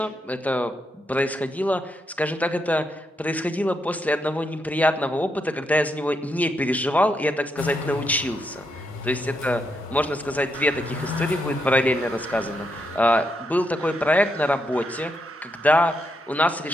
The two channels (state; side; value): normal; both; correlation 0.80